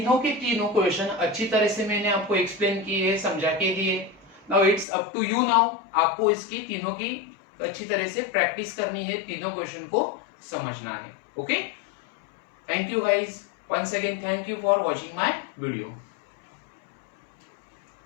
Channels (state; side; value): drops out; right; at 4.9 s